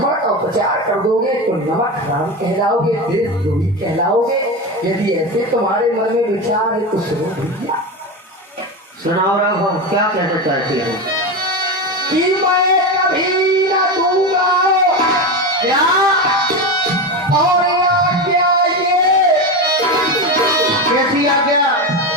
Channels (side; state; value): both; normal; correlation 0.18